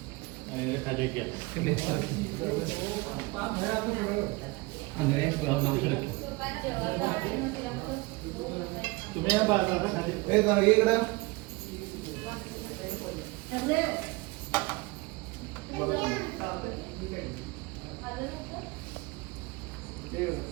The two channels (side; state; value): left; quieter; 24.1 dB